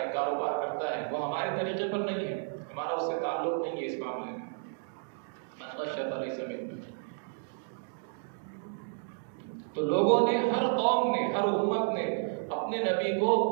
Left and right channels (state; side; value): silent; left; 57 dB below the other